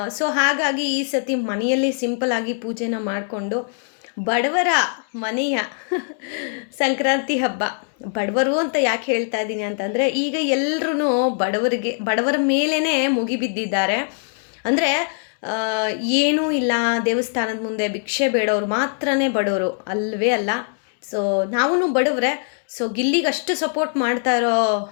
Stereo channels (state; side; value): silent; right; 64 dB below the other